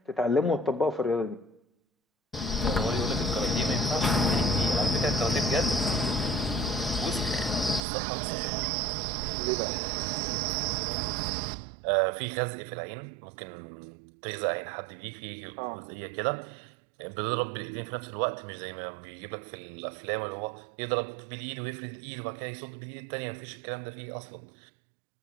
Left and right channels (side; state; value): left; drops out; at 7.8 s